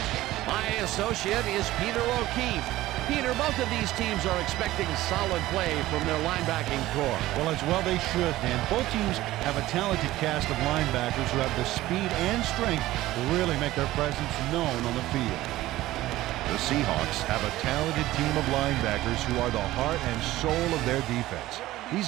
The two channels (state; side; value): quieter; left; 16.2 dB